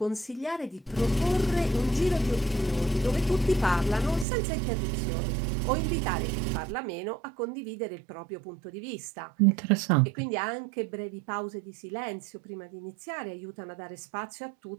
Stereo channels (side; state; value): left; drops out; at 4.2 s